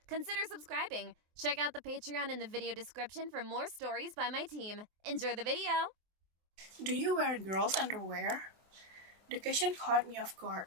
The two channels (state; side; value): late; left; 23 ms